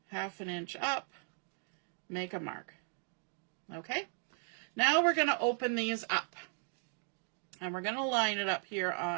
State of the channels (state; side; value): silent; left; 53 dB below the other